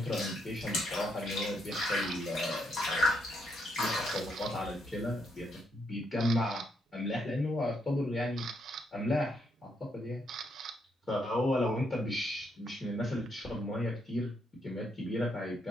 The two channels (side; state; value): both; normal; correlation 0.76